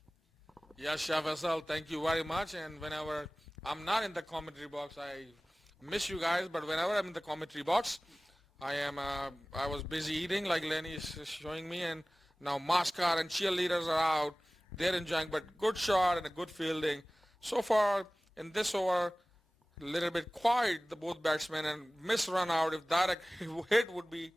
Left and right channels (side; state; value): both; normal; correlation 0.98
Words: Yes, Shah Faisal, thank you very much. And whenever I'm not in the commentary box, I miss you guys. But whenever I'm in the commentary box, I was busy eating, like Lenny is showing me, and now Mascot and cheerleaders are out. They're enjoying, but good shot and a good fielding. So far in this over, a little bit quiet, the both batsmen, and miss run out. If direct hit would be,